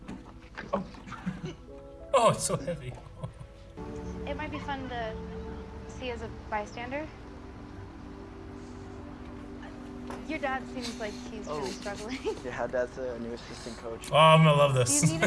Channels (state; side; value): identical; both; correlation 1.00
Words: Oh, it's so heavy. It might be fun to see as a bystander. Your dad seems like he's really struggling. Yeah, Dad's a new assistant coach. Oh, I'm gonna love this. Do you need